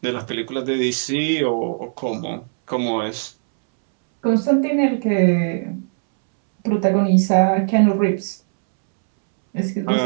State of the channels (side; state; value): left; silent; 66 dB below the other